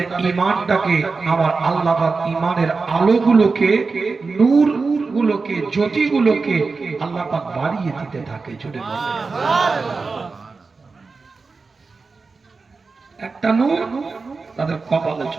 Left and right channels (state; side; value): quieter; left; 4.3 dB